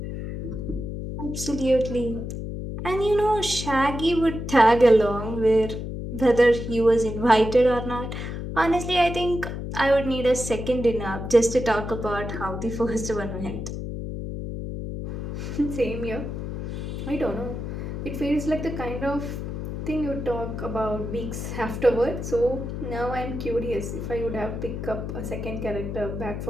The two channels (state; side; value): noise; left; hum, 6 dB below the sound